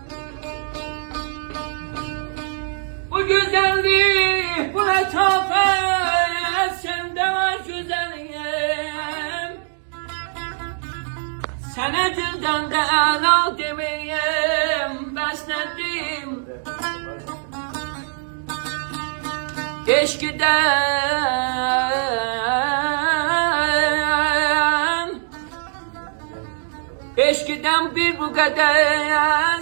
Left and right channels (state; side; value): silent; left; digital silence